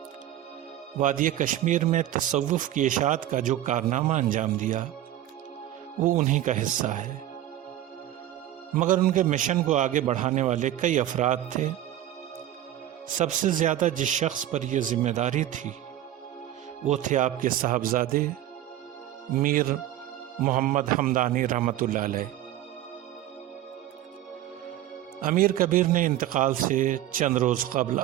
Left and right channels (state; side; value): quieter; left; 13.0 dB